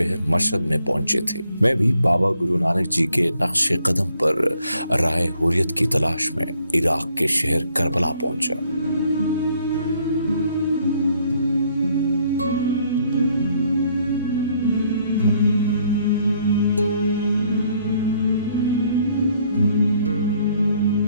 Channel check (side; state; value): both; inverted; correlation -0.67